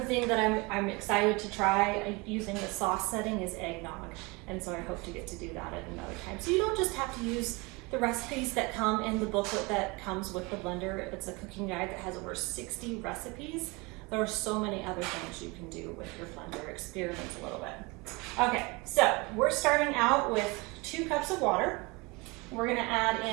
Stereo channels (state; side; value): quieter; left; 26.3 dB